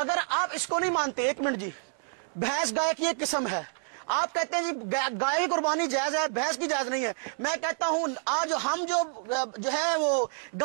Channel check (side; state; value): left; silent; digital silence